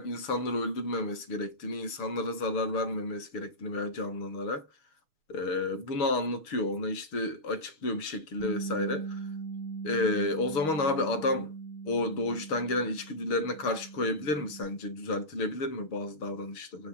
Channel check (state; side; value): late; right; 6.4 ms